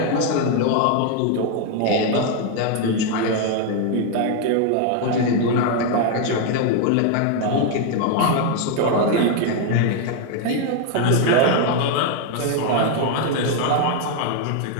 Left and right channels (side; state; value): both; different; correlation 0.00